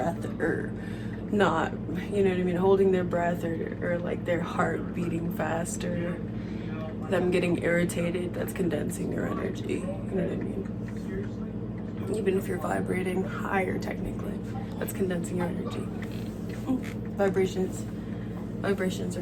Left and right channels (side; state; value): both; identical; correlation 1.00